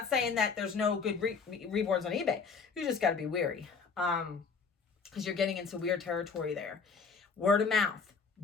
saying that there's no good reborns on eBay. You just got to be wary because you're getting into weird territory there. Word of mouth.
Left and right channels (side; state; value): right; quieter; 5.3 dB